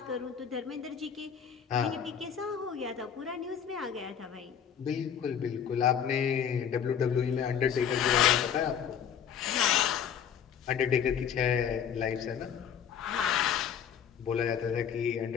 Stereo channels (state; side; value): quieter; right; 8.2 dB